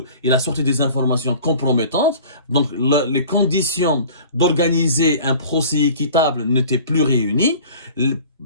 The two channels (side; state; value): both; inverted; correlation -0.44